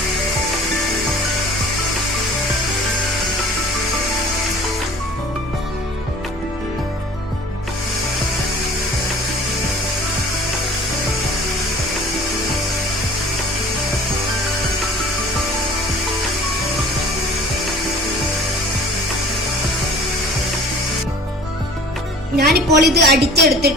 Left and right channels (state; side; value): normal; both; correlation 0.46